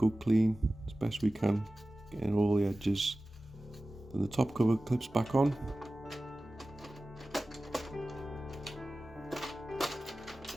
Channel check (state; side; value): normal; both; correlation 0.96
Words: clean as best we can, getting all the edges. Then the top cover clips back on.